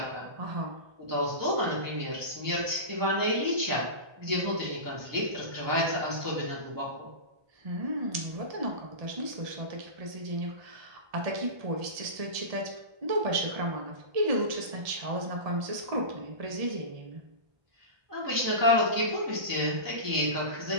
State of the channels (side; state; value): left; late; 1.2 ms